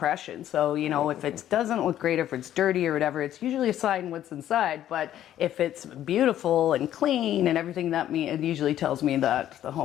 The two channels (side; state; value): right; quieter; 11.8 dB